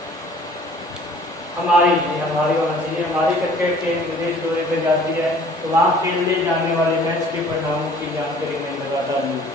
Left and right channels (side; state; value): both; normal; correlation 0.52